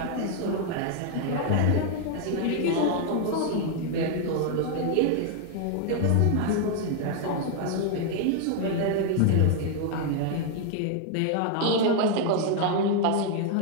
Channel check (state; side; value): different; both; correlation 0.00